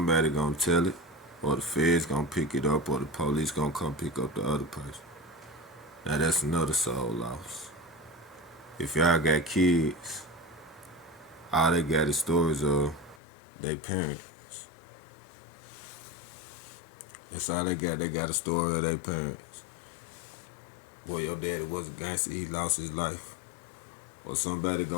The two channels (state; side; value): drops out; right; at 13.2 s